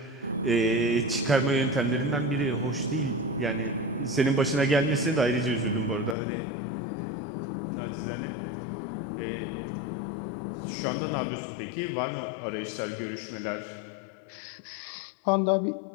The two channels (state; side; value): drops out; right; at 6.2 s